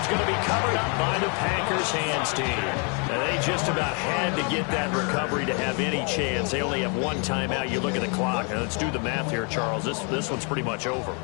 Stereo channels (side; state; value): right; quieter; 36.1 dB